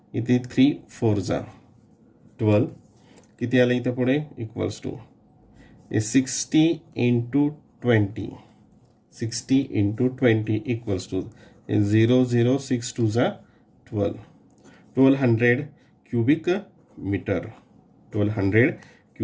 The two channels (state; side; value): identical; both; correlation 1.00